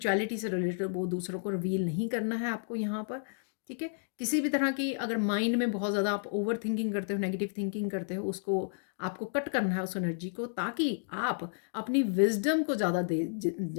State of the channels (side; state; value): right; silent; digital silence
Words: से रिलेटेड वो दूसरों को रिवील नहीं करना है आपको यहाँ पर, ठीक है। किसी भी तरह की अगर माइंड में बहुत ज़्यादा आप ओवर थिंकिंग करते हो, नेगेटिव थिंकिंग करते हो, उसको आपको कट करना है उस एनर्जी को, ताकि आप अपनी विजडम को ज़्यादा